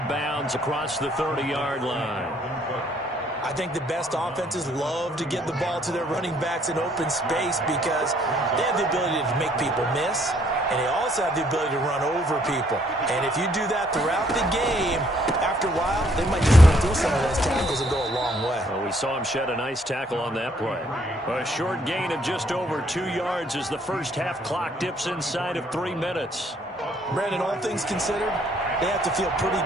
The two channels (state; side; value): normal; both; correlation 0.66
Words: bounds across the 30-yard line. I think the best offenses love to get the ball to their running backs in open space because they have the ability to make people miss, and they also have the ability to run over people. And if you do that throughout the game, after a while, they might just run through some of those tackles and go a long way. Well, we saw him shed a nice tackle on that play. A short gain of just over 2 yards as the first half clock dips inside of 3 minutes. Brandon, all things considered, they have to feel pretty